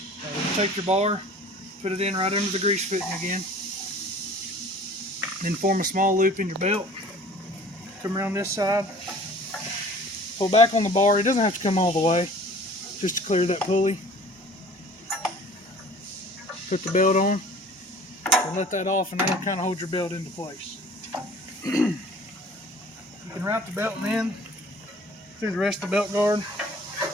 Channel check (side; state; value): both; normal; correlation 0.48